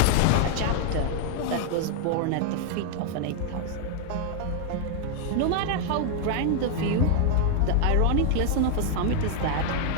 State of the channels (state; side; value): different; both; correlation 0.00